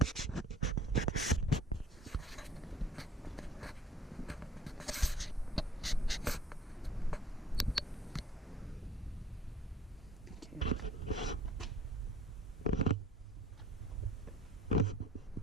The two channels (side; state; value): both; normal; correlation 0.53